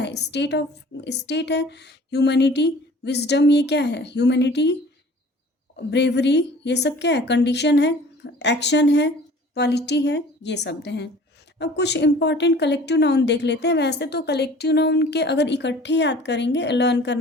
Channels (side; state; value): both; normal; correlation 0.48